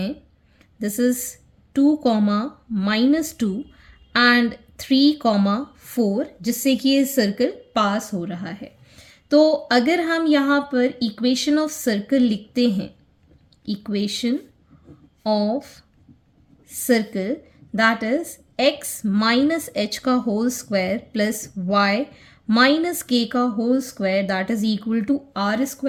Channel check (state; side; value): identical; both; correlation 1.00